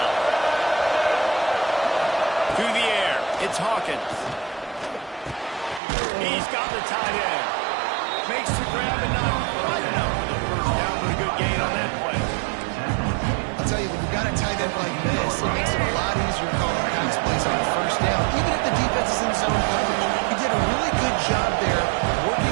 Through the air, it's Hawkins. He's got the tight end. Makes the grab and not quite enough for the first down, but a good gain on that play. I'll tell you, when you've got a tight end like this, it makes it a lot easier calling pass plays on the first down. Even if the defense is in zone coverage, he did a really good job there, working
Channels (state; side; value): drops out; left; at 5.8 s